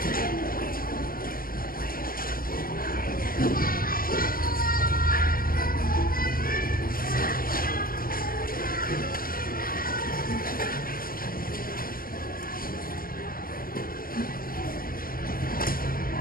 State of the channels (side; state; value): right; late; 0.42 ms